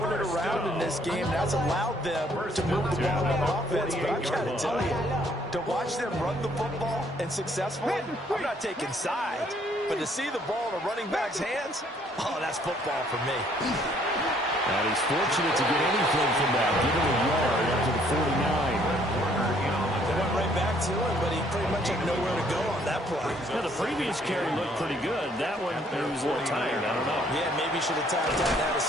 it around in this game. That's allowed them to move the ball on offense. But I've got to tell you, to watch them run the football and successfully, I'm not taking sides. But to see the ball in a running back's hands, oh, that's football for me. And he's fortunate to get anything from that. Give him a yard up to the 49. They went right back to him, but he pretty much had nowhere to go on that play. Yeah, the previous carry looked pretty good. That one, he was a little tired. I don't know. Yeah, maybe he should have tapped out and had a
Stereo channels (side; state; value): both; normal; correlation 0.64